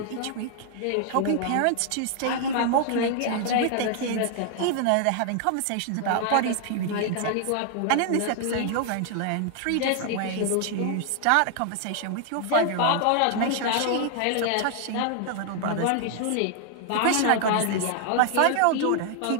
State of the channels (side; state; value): both; different; correlation 0.00